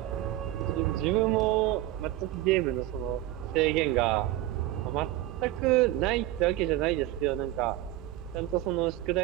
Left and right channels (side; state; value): left; quieter; 15.1 dB